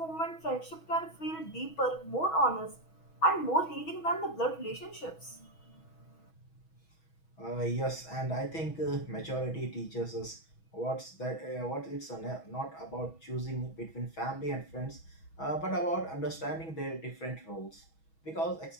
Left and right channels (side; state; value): right; late; 6.2 ms